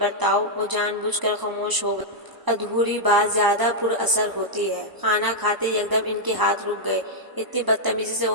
وہ جان بوجھ کر خاموش ہو گئی۔ ادھوری بات زیادہ پر اثر ہوتی ہے۔ کھانا کھاتے یکدم ان کے ہاتھ رک گئے۔ اتنی بدتمیزی سے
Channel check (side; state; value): left; late; 1.0 ms